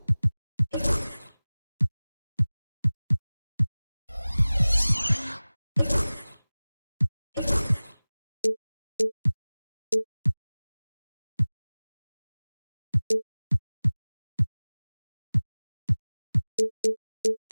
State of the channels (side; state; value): both; inverted; correlation -0.99